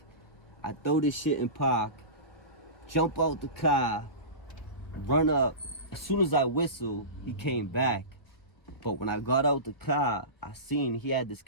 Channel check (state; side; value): late; right; 1.3 ms